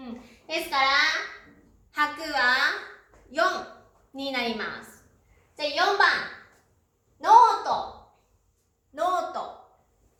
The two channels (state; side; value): identical; both; correlation 1.00